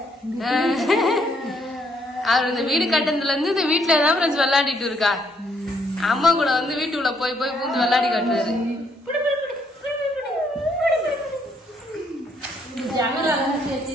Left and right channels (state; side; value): normal; both; correlation 0.70